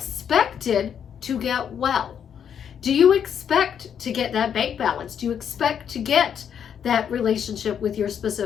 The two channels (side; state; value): right; quieter; 8.3 dB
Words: to get well. Do you expect to get that bank balance? Do you expect to get that relationship with your